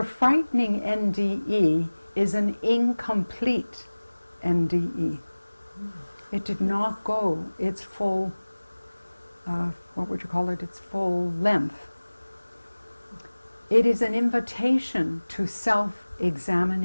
frightening NDE is an incomplete NDE. It did not go its full, what would you call it, its full length. It is an invitation to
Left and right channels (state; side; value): inverted; both; correlation -1.00